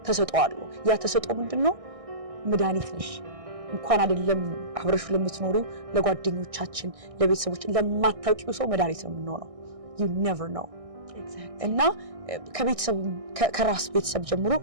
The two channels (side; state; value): left; late; 1.6 ms